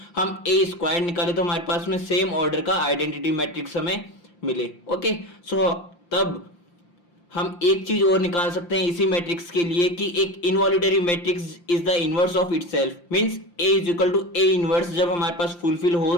हम ए स्क्वायर निकाले तो हमारे पास में सेम ऑर्डर का आइडेंटिटी मैट्रिक्स हमें मिले। ओके, तब हम एक चीज और निकाल सकते हैं इसी मैट्रिक्स के लिए कि एक involutory matrix is the inverse of itself. Means A is equal to A inverse जब हमारे पास फुलफिल हो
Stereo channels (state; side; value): late; right; 5.8 ms